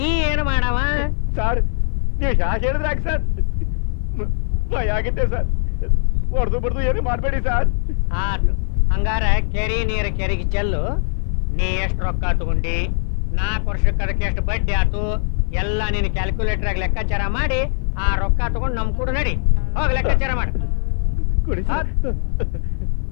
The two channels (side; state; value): right; silent; 66 dB below the other